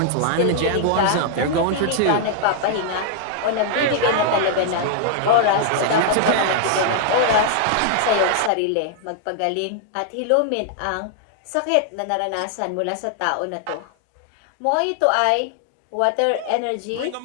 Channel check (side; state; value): both; different; correlation -0.01